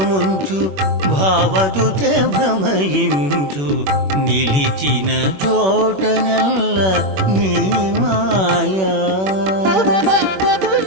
ముంచు భావజుచే భ్రమయించు నిలిచిన చోటనెల్ల నీ మాయా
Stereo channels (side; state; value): left; late; 21 ms